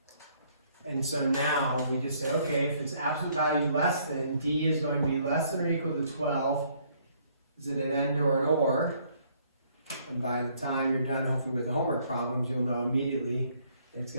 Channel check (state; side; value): inverted; both; correlation -0.65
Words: And so now we just say, okay, if it's absolute value less than, d is going to be less than or equal to 12. Is it an and or an or? And by the time you're done, hopefully with the homework problems, you'll know immediately it's